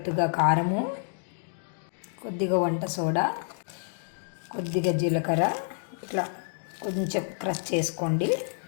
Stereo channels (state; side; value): silent; right; digital silence